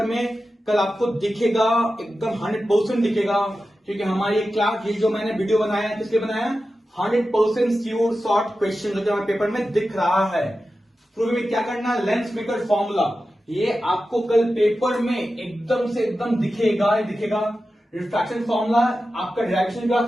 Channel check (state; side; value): normal; both; correlation 0.93